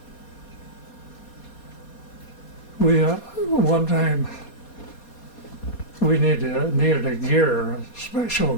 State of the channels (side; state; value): right; late; 4.2 ms